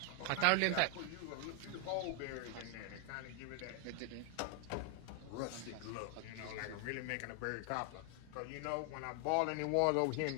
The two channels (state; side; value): different; both; correlation 0.00